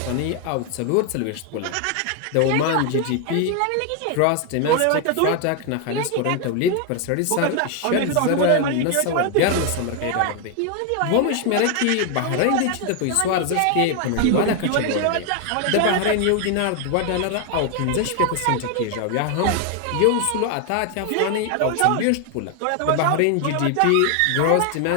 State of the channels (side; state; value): both; different; correlation 0.01